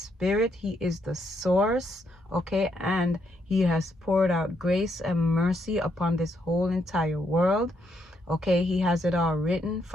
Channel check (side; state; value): both; normal; correlation 0.76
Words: He is the source. Okay, and he has poured out grace and mercy upon this whole entire world. Okay, he has it all written